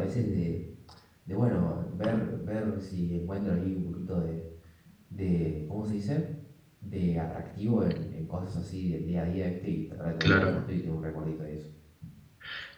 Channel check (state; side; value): identical; both; correlation 1.00